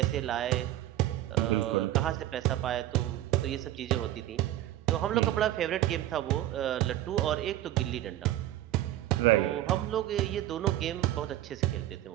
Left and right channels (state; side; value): quieter; left; 14.2 dB